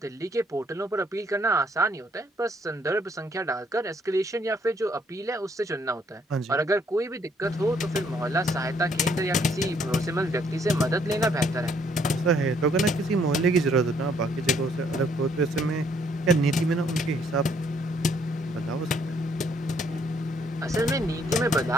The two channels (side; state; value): both; normal; correlation 0.67